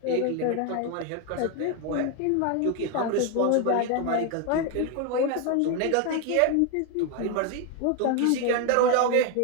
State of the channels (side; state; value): both; different; correlation 0.01